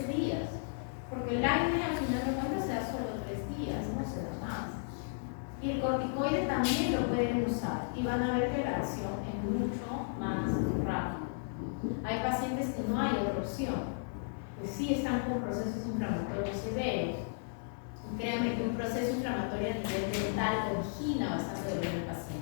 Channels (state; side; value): silent; right; digital silence